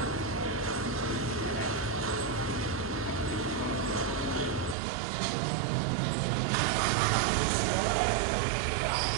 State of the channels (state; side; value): drops out; left; at 4.8 s